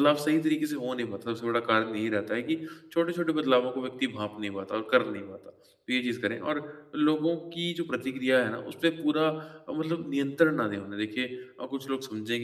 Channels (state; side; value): identical; both; correlation 1.00